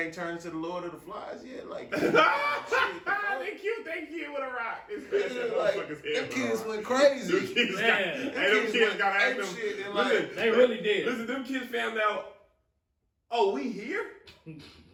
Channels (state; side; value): identical; both; correlation 1.00